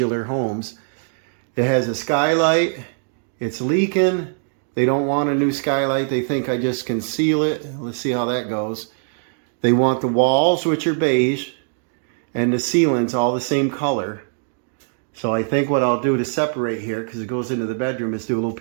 homes. It has a skylight. It's leaking. They don't want a new skylight. They think I just conceal it. Let's see how that goes. They want the walls, which are beige, and the ceilings all the same color. So I think what I'll do to separate here, because it goes into the bedroom, is do a little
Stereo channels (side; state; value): left; silent; 65 dB below the other